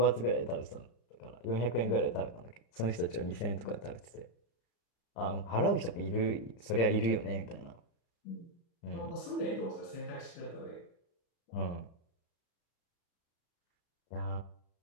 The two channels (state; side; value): late; right; 35 ms